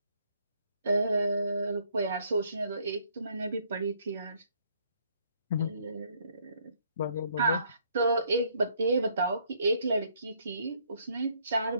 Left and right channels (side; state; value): both; inverted; correlation -0.67